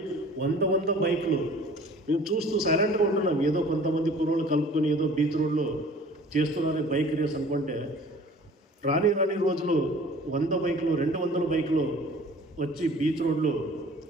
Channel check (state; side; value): normal; both; correlation 0.47